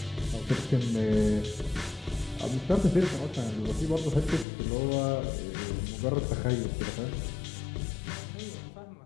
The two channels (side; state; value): right; drops out; at 4.5 s